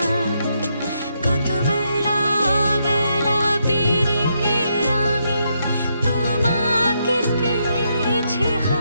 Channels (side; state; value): both; inverted; correlation -0.79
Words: কত বেলা বেলা পেরিয়ে আমি তোমাকে পেয়েছি,